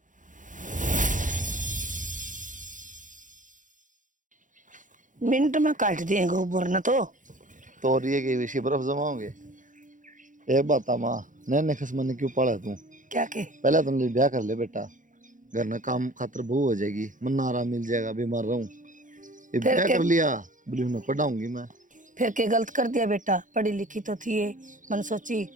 मिनट में काट देंगे ऊपर न तो ये के विषय बर्फ जमाओगे। एक बात माँ नैने खसमन ने क्यों पाला तू? क्या के पहले तुम ब्याह कर ले बेटा, घर में काम खातर बहू हो जाएगी, मन आराम मिल जाएगा, बीमार रहूं। ये ब्याह कर लिया बोली मैं पढ़ाऊंगी मैं। फिर के गलत कर दिया बेटा, पढ़ी लिखी तो थी ये, मन सोची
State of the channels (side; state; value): left; late; 0.37 ms